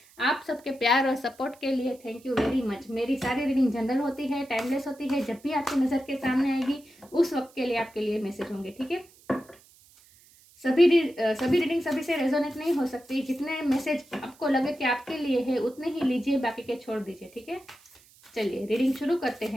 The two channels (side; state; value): right; noise; hiss, 27 dB below the sound